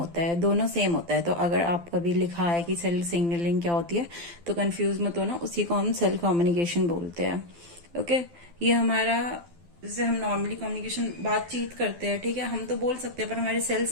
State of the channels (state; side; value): late; left; 12 ms